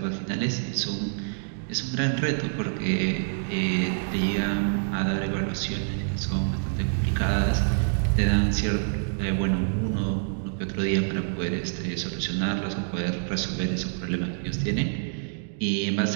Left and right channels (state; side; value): silent; left; digital silence